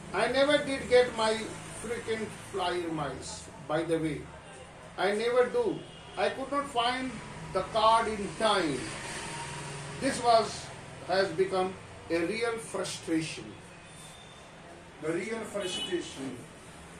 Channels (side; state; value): both; identical; correlation 1.00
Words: I never did get my frequent flyer miles, by the way. I never do. I could not find the card in time. This has become a real frustration. The real frustration.